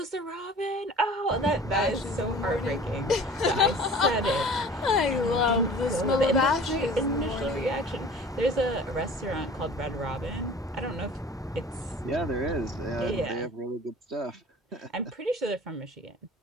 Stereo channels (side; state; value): both; normal; correlation 0.44